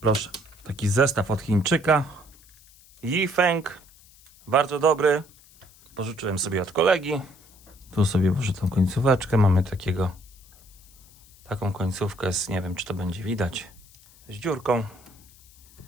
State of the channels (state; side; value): noise; left; hiss, 26 dB below the sound